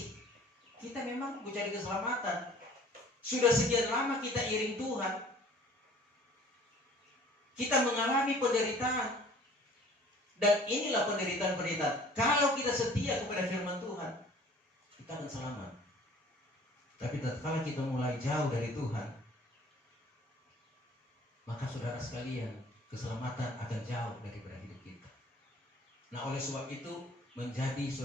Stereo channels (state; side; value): normal; both; correlation 0.51